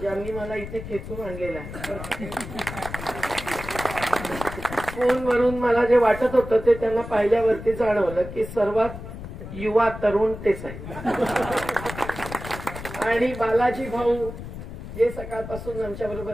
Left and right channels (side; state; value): left; noise; rumble, 10 dB below the sound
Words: मला इथे खेचून आणलेला आहे. फोनवरून मला जे वाटत होतं ते त्यांना पाहिल्यावरती जाणवलं की सर्वात युवा तरुण तेच आहे. आणि बालाजी भाऊ जे सकाळपासून आमच्या